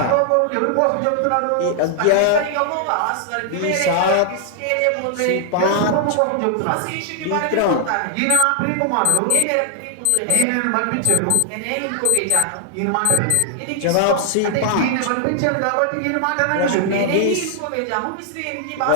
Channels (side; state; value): both; different; correlation 0.00